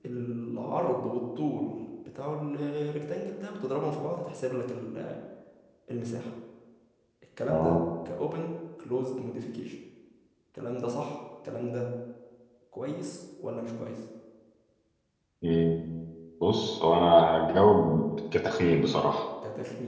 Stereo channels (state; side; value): identical; both; correlation 1.00